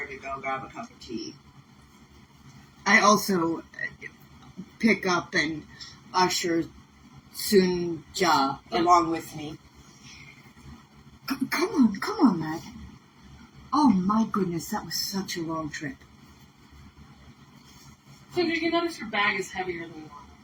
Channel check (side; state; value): both; identical; correlation 1.00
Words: to go grab a cup of tea. I also pick up and usher Sunja along with me. Come on, lad. Oh my goodness, that was such a long trip. So you notice your bag is heavier than normal.